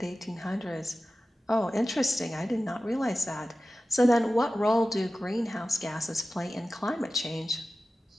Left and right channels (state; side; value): normal; both; correlation 0.95